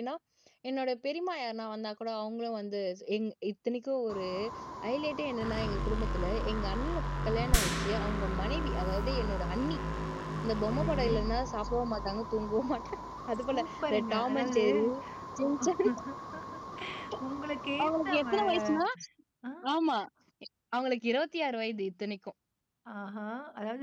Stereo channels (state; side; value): identical; both; correlation 1.00